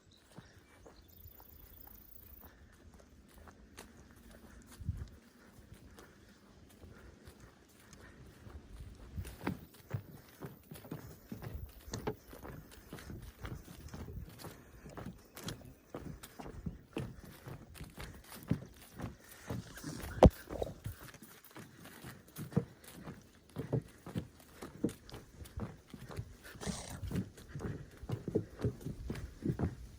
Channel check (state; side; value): identical; both; correlation 1.00